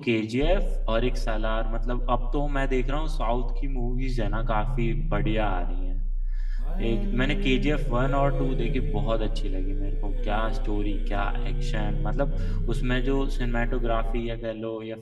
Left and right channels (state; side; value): identical; both; correlation 1.00